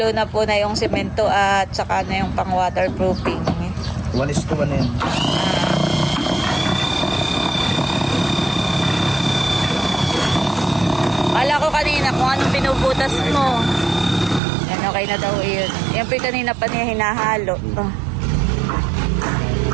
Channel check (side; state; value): left; drops out; at 14.4 s